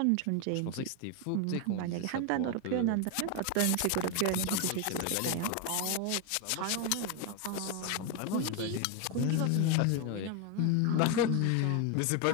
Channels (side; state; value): both; different; correlation 0.01